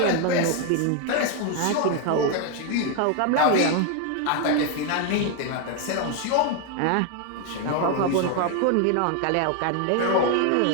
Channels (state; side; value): different; both; correlation 0.01